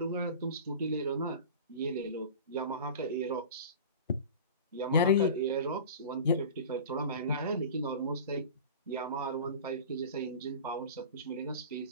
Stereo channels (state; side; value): inverted; both; correlation -0.35